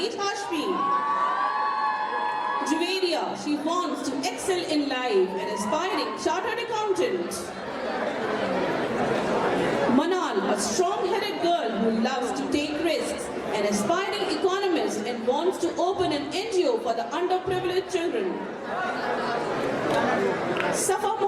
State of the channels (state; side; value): identical; both; correlation 1.00